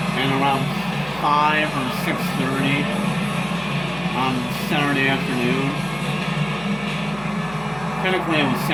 at around 5 or 6:30 on Saturday afternoon. Technically it was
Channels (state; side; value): noise; right; hum, 17 dB below the sound